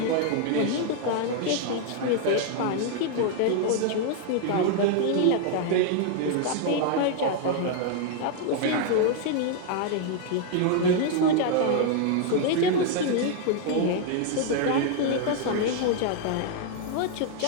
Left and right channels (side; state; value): both; different; correlation 0.00